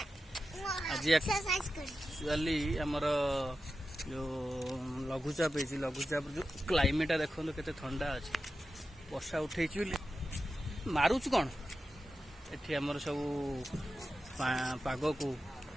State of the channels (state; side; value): normal; both; correlation 0.92